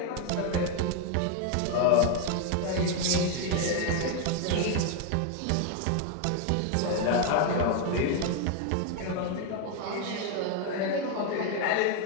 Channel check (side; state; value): both; different; correlation 0.01